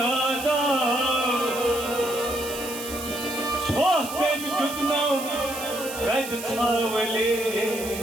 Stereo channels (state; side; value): noise; right; hiss, 10 dB below the sound